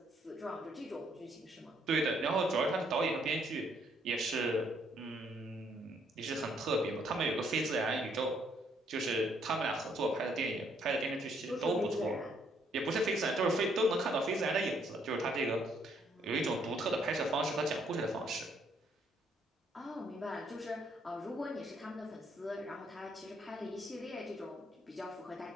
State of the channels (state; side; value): normal; both; correlation 0.69